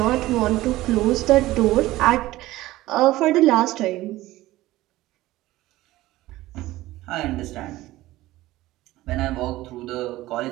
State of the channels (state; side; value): quieter; left; 16.9 dB